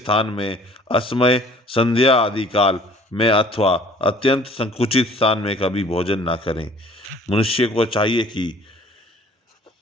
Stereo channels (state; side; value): normal; both; correlation 0.53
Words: में, असमय संध्या आदि काल में अथवा अत्यंत संकुचित स्थान में कभी भोजन ना करें। मनुष्य को चाहिए कि